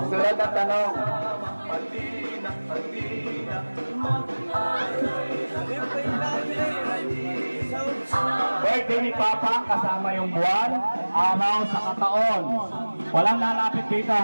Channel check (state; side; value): inverted; both; correlation -1.00